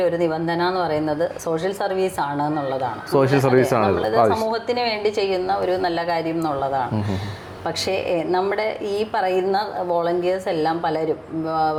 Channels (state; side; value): identical; both; correlation 1.00